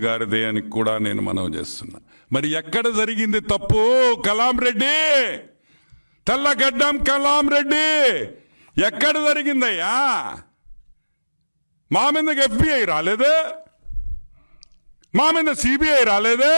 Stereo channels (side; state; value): both; inverted; correlation -1.00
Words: గారిదే అని కూడా నేను మనవి చేస్తున్నా. మరి ఎక్కడ జరిగింది తప్పు? కలాం రెడ్డి, తెల్లగడ్డం కలాం రెడ్డి, ఎక్కడ జరిగిందయ్యా? మా మీదకి ఎఫ్బిఐ రాలేదే, మా మీద సిబిఐ రాలేదే.